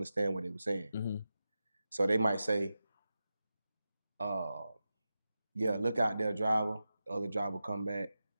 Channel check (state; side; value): inverted; both; correlation -0.92